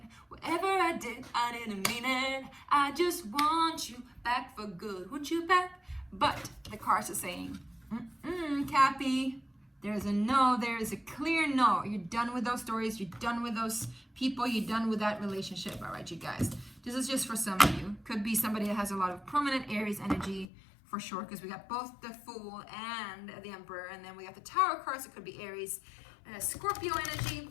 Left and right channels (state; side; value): drops out; right; at 20.5 s